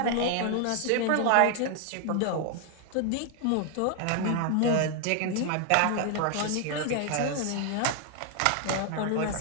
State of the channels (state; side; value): different; both; correlation 0.00